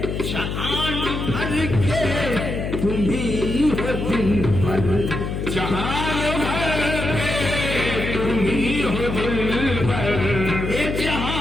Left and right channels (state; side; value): noise; left; hum, 3 dB below the sound